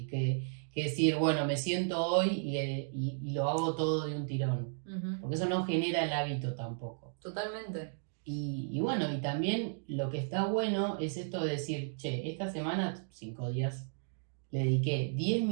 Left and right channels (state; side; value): silent; left; digital silence